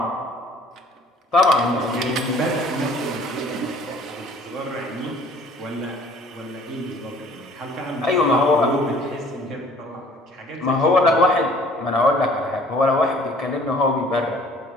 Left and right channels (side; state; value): both; normal; correlation 0.54